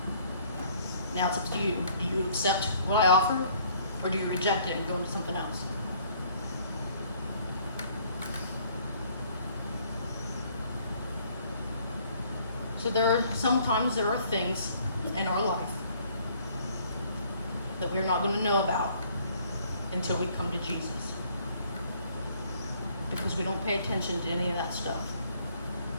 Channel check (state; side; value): inverted; both; correlation -0.61